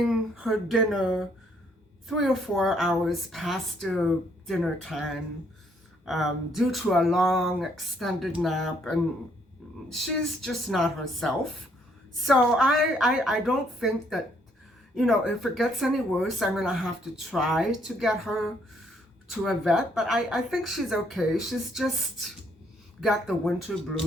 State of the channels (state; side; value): normal; both; correlation 0.68